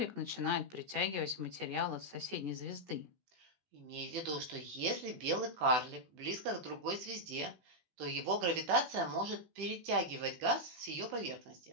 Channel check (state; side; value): late; left; 17 ms